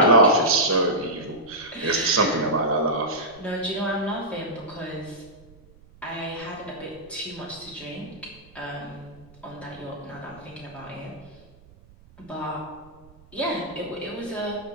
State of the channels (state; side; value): noise; right; rumble, 25 dB below the sound